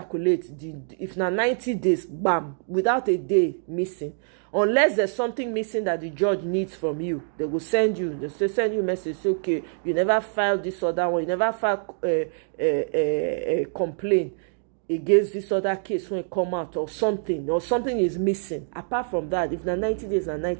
if na 90 days, bam, without a day missing. Unless there's something missing that the judge needs from you, they will send you a message, say, okay, you never filed this other one, you never filed a complaint against this other case when it come out, or something is missing. Apart from that, if na 90 days and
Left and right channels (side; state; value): left; silent; digital silence